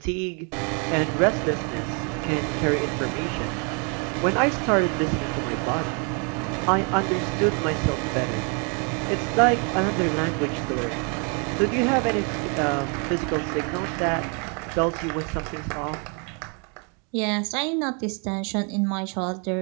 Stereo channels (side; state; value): left; quieter; 36.1 dB